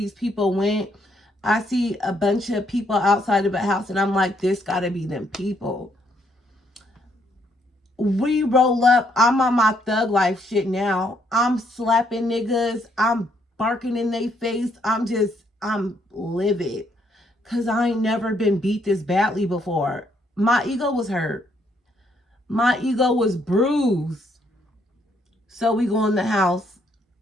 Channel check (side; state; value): both; normal; correlation 0.72